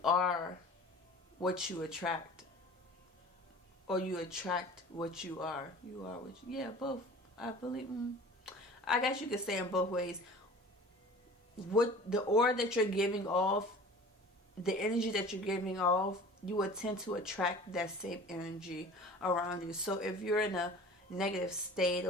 are what you attract, or you attract what you are. You are what you, yeah, both. I believe. I guess you could say in both ways. What the aura that you're giving off, the energy that you're giving off, you will tend to attract that same energy around you. So if you're in a negative state,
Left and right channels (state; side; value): normal; both; correlation 0.42